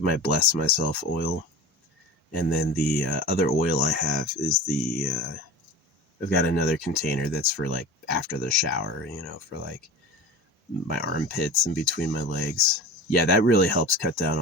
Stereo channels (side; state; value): both; normal; correlation 0.34